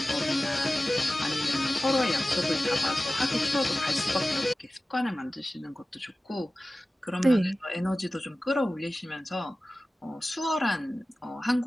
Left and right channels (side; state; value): both; normal; correlation 0.96